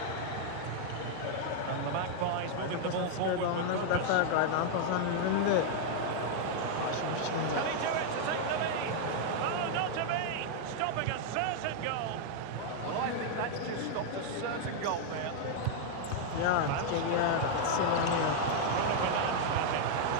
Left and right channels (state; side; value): different; both; correlation -0.01